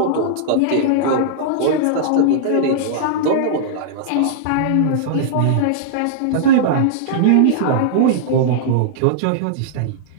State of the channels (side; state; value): both; different; correlation -0.02